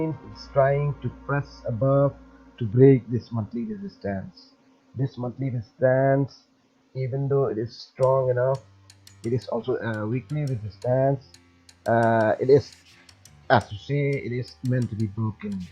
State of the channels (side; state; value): both; identical; correlation 1.00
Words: it's trying to press above to break this monthly resistance. This monthly resistance, even though it is strong enough, it is also a weekly resistance. It is, as to say, it is meant to be broken.